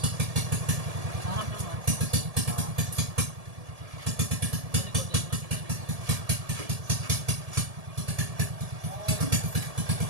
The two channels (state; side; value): late; left; 1.7 ms